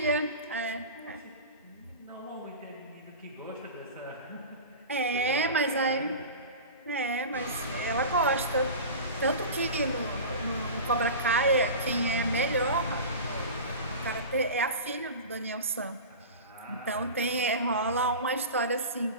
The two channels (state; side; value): inverted; both; correlation -0.31